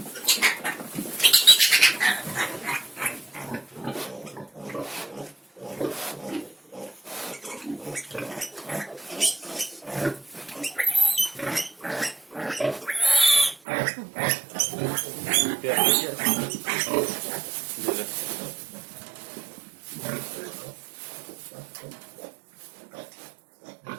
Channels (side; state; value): left; drops out; at 13.6 s